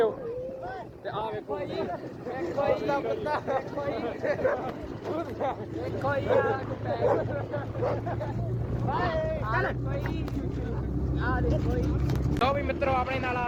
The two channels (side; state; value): both; identical; correlation 1.00